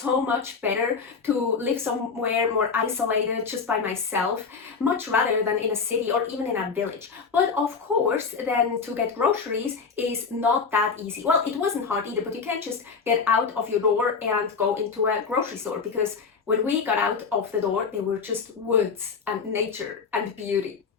much better to live somewhere more isolated just by myself, much rather than in a city or even in a village. But of course, then to get groceries is not that easy. Well, it wasn't hard either, but you can't just get out of your door and go into a grocery store, because when we got out of the door, they were just woods and nature and beauty.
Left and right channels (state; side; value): quieter; right; 5.3 dB